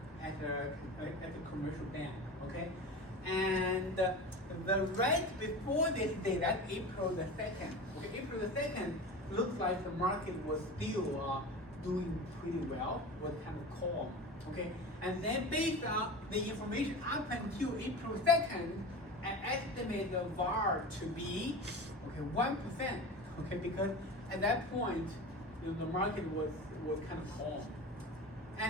at a commercial bank, okay? And the right before this day, that's April the 2nd. Okay, April the 2nd looks like the market was still doing pretty well, was kind of calm, okay? And then based on the information up until April 2nd, I estimate the VAR to be 1%, okay? Because at that point, the market was kind of calm.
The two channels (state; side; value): normal; both; correlation 0.31